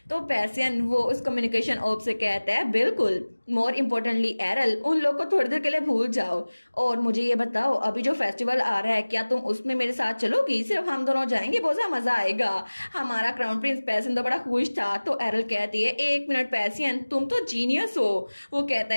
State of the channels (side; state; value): both; inverted; correlation -1.00